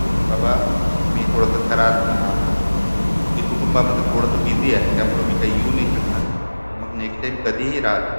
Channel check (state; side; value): inverted; both; correlation -1.00